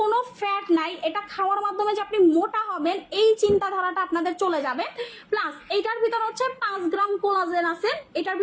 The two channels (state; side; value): identical; both; correlation 1.00